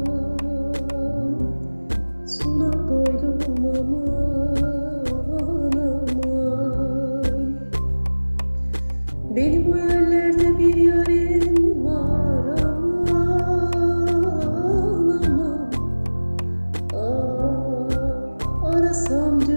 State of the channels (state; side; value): inverted; both; correlation -1.00